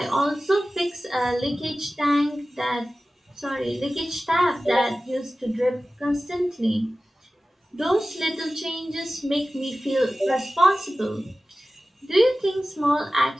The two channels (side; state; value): both; normal; correlation 0.96